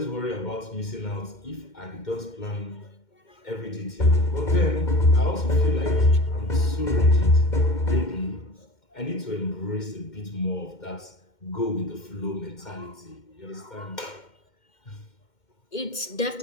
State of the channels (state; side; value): late; right; 2.1 ms